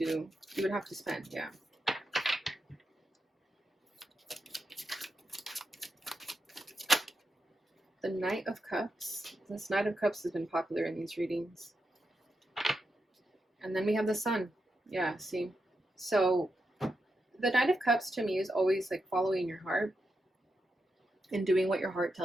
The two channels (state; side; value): normal; both; correlation 0.86